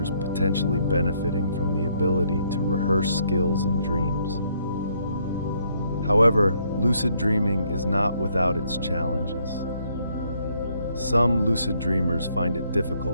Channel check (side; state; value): both; inverted; correlation -0.70